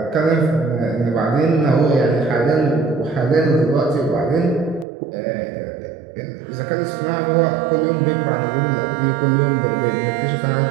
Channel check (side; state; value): left; drops out; at 4.9 s